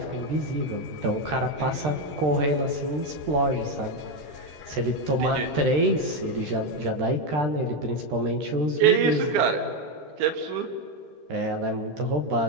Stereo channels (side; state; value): left; late; 13 ms